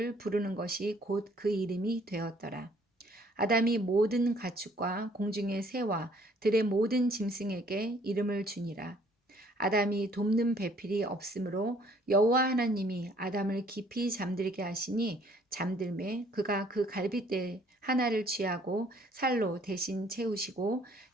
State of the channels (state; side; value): normal; both; correlation 0.61